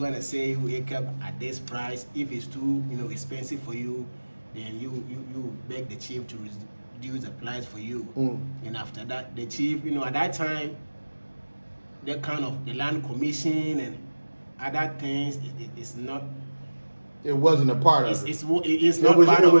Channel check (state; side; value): inverted; both; correlation -1.00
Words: say you acre at this price. If it's too expensive for you, then you beg the chief to reduce the price for you. And after that, the chief, at that time, the kind of the land commission and other things, it's not. It wasn't a part of it. It's not part